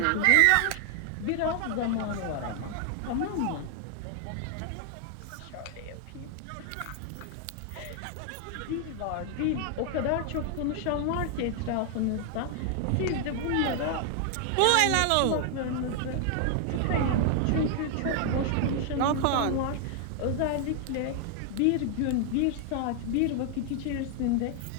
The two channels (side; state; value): both; different; correlation 0.00